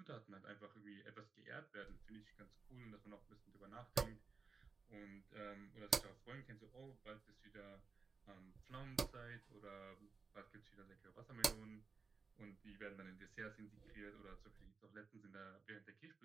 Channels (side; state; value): left; quieter; 4.7 dB